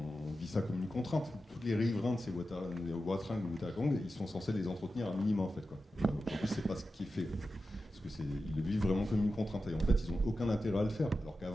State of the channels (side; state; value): both; normal; correlation 0.92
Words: vit ça comme une contrainte. Tous les riverains de ces Watringues ou Watagong, ils sont censés les entretenir à minima, en fait, quoi. Aujourd'hui, c'est pas ce qui est fait. Parce qu'ils le vivent vraiment comme une contrainte. Et en fait, ils n'ont aucun intérêt à le faire. Alors